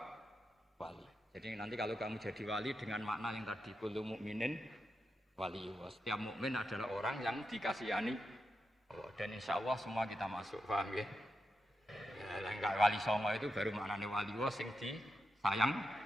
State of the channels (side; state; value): both; normal; correlation 0.87